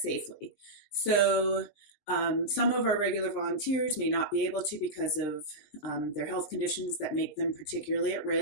So some of our regular volunteers may not be able to because of their health conditions that make them particularly at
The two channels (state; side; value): late; right; 20 ms